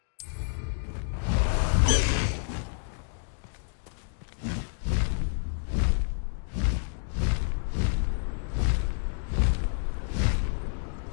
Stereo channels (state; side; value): silent; right; digital silence